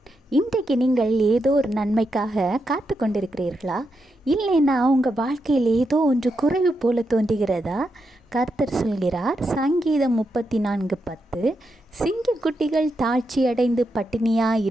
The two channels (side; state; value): both; normal; correlation 0.84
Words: இன்றைக்கு நீங்கள் ஏதோ ஒரு நன்மைக்காக காத்து கொண்டிருக்கிறீர்களா? இல்லைன்னா உங்கள் வாழ்க்கையில் ஏதோ ஒன்று குறைவு போல தோன்றுகிறதா? கர்த்தர் சொல்கிறார், சங்கீதம் 34:10, சிங்கக்குட்டிகள் தாழ்ச்சி அடைந்து